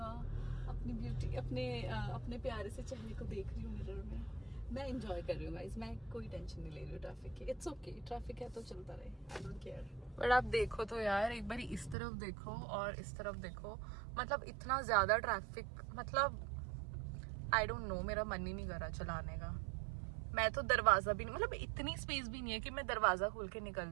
अपनी ब्यूटी, अपने प्यारे से चेहरे को देख रही हूँ मिरर में। मैं एंजॉय कर रही हूँ गाइस, मैं कोई टेंशन नहीं ले रही हूँ ट्रैफिक की। इट्स ओके, ट्रैफिक है तो चलता रहे, आई डोंट केयर। बट आप देखो तो यार, एक बार इस तरफ देखो और इस तरफ देखो, मतलब इतना ज्यादा ट्रैफिक, मतलब आई डोंट नो, मेरा मन ही नहीं कर रहा चलाने का। मैं तो दरवाजा भी नहीं, मतलब इतनी स्पेस भी नहीं है कि मैं दरवाजा खोल के निकल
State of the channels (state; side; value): drops out; left; at 12.0 s